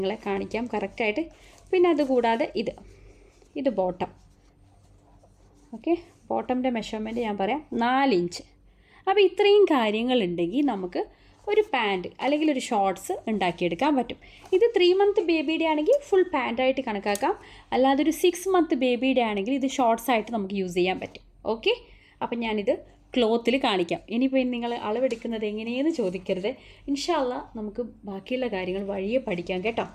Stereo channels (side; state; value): both; identical; correlation 1.00